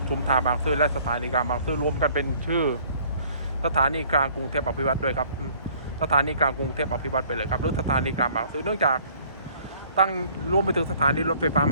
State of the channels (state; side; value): inverted; both; correlation -0.56